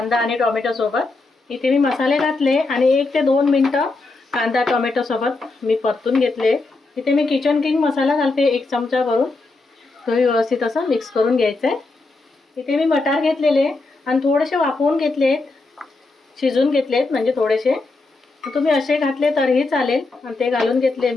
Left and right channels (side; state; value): right; quieter; 3.4 dB